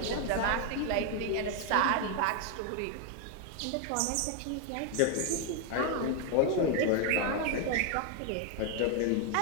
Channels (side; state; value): both; different; correlation 0.01